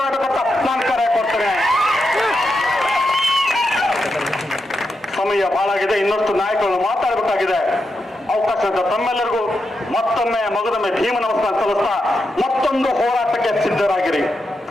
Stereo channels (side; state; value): both; normal; correlation 0.86